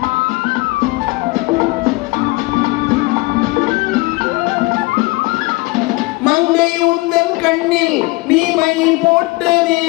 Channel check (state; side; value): quieter; right; 23.7 dB